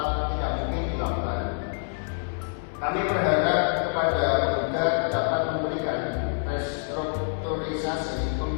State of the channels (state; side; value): silent; right; 59 dB below the other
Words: mungkin dilakukan. Kami berharap kepada penggugat dapat memberikan restrukturisasi